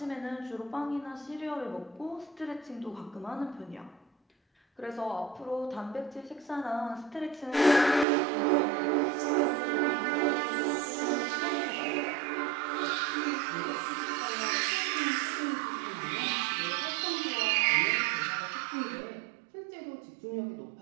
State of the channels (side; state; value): left; drops out; at 8.1 s